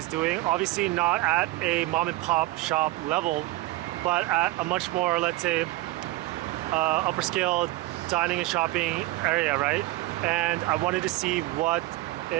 doing. Obviously not at a mom and pop shop level, but at a much more, let's say, upper scale dining and shopping area, right? And I wanted to see what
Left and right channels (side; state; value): left; quieter; 18.8 dB